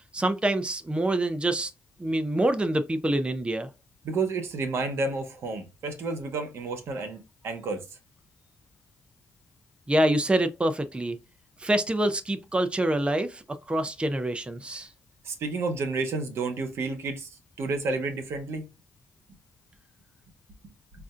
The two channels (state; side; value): normal; both; correlation 0.79